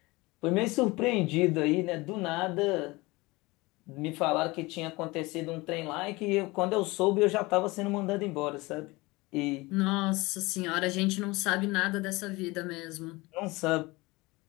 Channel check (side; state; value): right; quieter; 22.7 dB